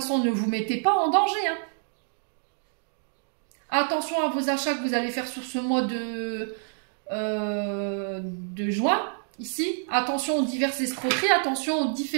ne vous mettez pas en danger. Hein. Attention à vos achats que vous allez faire sur ce mois de juin. Ici, attention aux diverses escroqueries, attention aux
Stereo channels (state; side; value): silent; left; digital silence